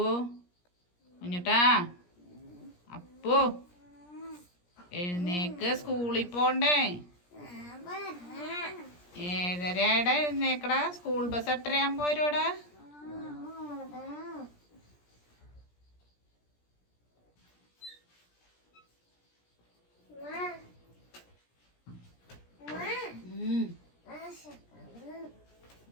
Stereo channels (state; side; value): late; right; 17 ms